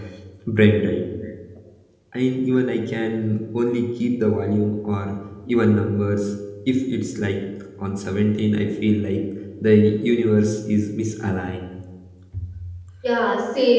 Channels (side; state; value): both; identical; correlation 1.00